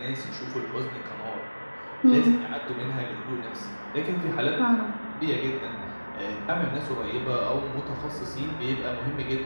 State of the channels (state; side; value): inverted; both; correlation -1.00